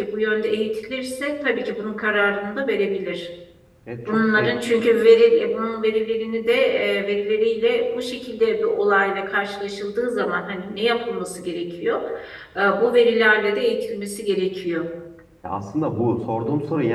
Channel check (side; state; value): both; identical; correlation 1.00